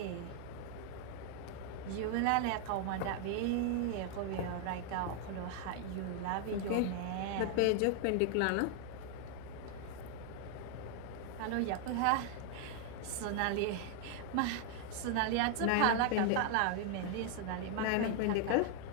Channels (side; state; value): both; different; correlation 0.00